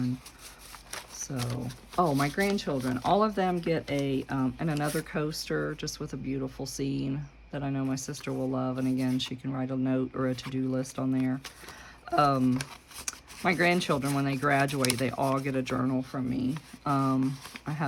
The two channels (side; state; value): both; identical; correlation 1.00